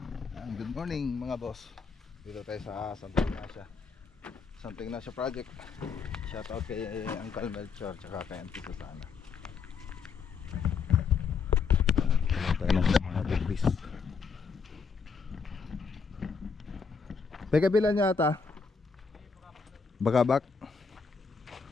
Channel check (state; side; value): quieter; right; 5.4 dB